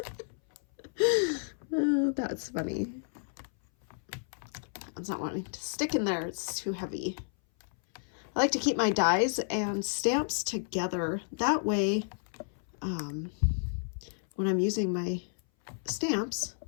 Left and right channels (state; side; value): silent; right; 57 dB below the other